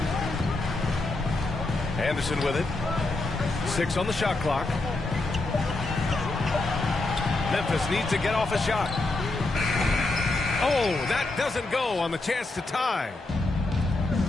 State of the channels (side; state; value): right; quieter; 3.0 dB